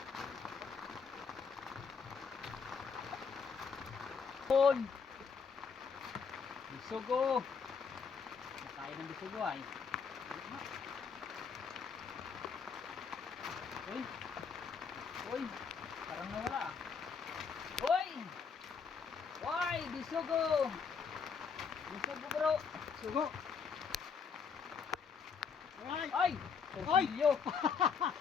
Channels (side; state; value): right; quieter; 5.9 dB